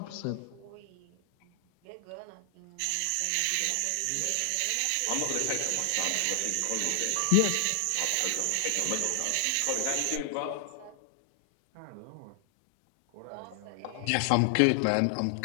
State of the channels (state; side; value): different; both; correlation 0.00